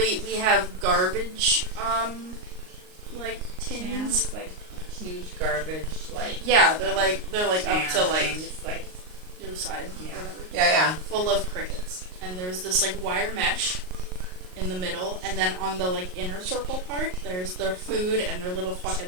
we have garbage, like tins. Cans, like huge garbage, like Yeah, they're like up to like things, like your side, Yeah. or whatever, Yeah. full of crickets. And there's this like wire mesh in the middle, and then on the like inner circle part, there's their food and their little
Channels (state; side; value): late; left; 38 ms